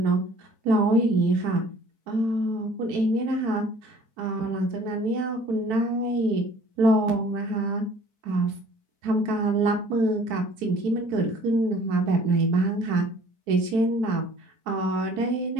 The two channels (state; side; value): late; left; 4.6 ms